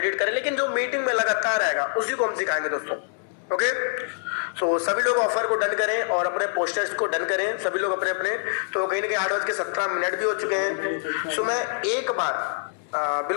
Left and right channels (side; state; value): right; silent; digital silence